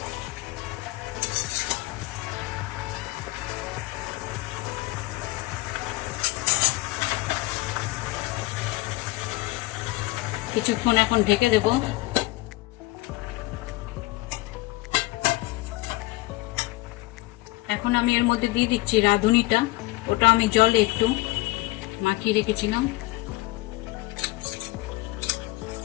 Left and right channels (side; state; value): right; quieter; 20.2 dB